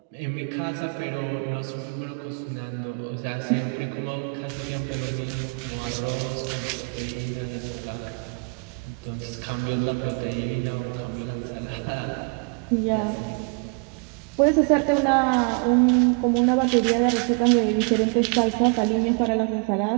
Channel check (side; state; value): left; quieter; 36.8 dB